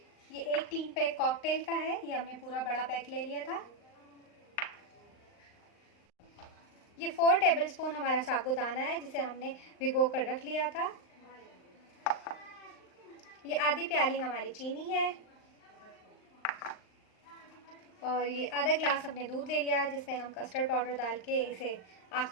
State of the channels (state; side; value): late; right; 39 ms